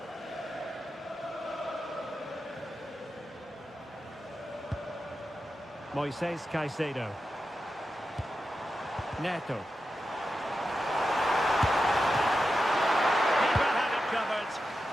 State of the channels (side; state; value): both; normal; correlation 0.90